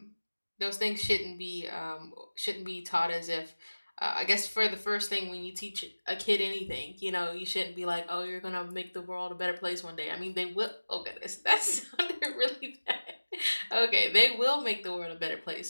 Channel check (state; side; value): inverted; both; correlation -1.00